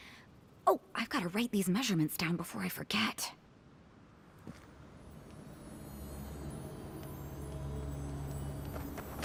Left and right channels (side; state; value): both; identical; correlation 1.00